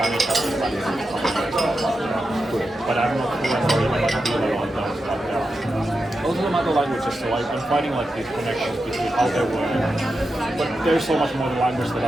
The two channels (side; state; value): both; normal; correlation 0.89